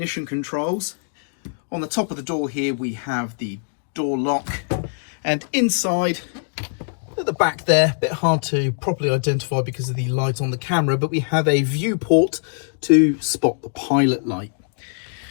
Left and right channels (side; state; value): right; silent; digital silence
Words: controls. On the top of the door here, we have the door lock. And inside, at the back there, a bit hard to properly identify because of the light on the camera, but we have a viewport to spot the pilot light.